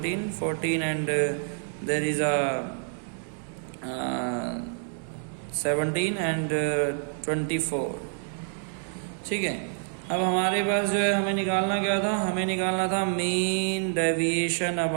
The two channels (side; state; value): left; silent; 60 dB below the other